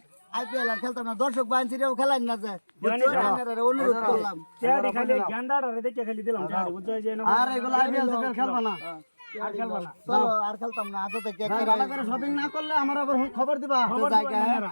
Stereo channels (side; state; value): both; inverted; correlation -1.00